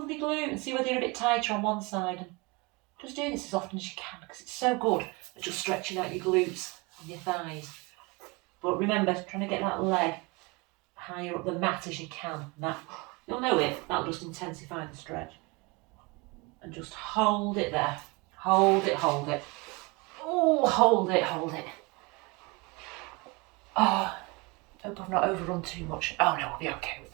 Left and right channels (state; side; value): quieter; left; 26.5 dB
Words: glute and see whether you're a bit tighter on one side. And just do this as often as you can because it's so good at just stretching out your glutes and your thighs. But remember, trying to get that leg higher up the mat as you can. That, you'll know it, that'll just intensify the stretch. And just hold it there. Hold it, hold it. Oh, hold it, hold it. Oh, hope I've not overrun too much. Oh no, we'll be okay. We